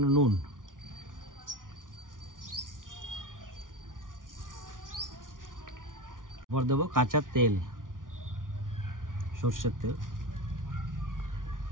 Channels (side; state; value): left; late; 0.89 ms